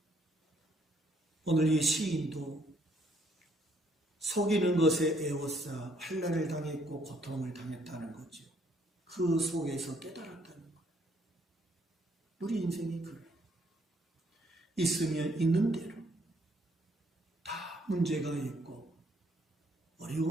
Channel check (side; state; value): both; normal; correlation 0.67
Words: 오늘 이 시인도 속이는 것에 애워싸 환난을 당했고 고통을 당했다는 거죠. 그 속에서 깨달았다는 거예요. 우리 인생이 그래요. 있으면 있는 대로 다 문제가 있고